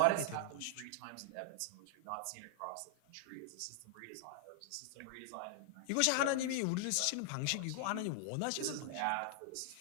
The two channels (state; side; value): different; both; correlation -0.01